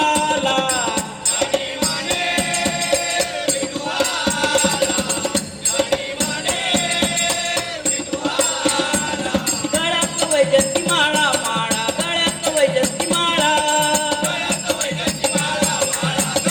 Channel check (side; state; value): both; identical; correlation 1.00